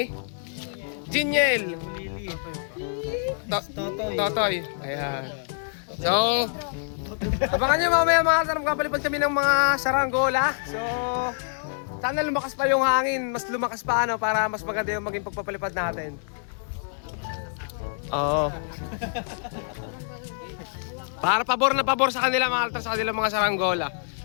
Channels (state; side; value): silent; right; digital silence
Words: Jiniel. Lili. Totoy. Ayan. So, abangan nyo mamaya mga altar. Magpapalipad kami ng mga saranggola. So, sana lumakas pa yung hangin. Mas lumakas pa para mas maganda yung maging pagpapalipad natin. Oo. Para pabor na pabor sa kanila mga altar, sa kanila mga saranggola.